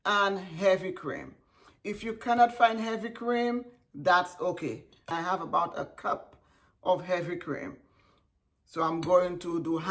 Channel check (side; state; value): both; identical; correlation 1.00